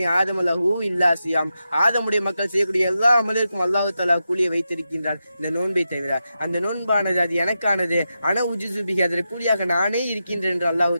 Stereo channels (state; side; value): inverted; both; correlation -0.89